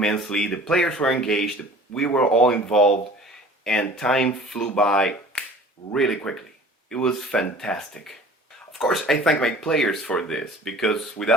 The players were engaged, we were all involved, and time flew by really quickly. It was fantastic. Of course, I thank my players for this, because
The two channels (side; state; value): both; normal; correlation 0.46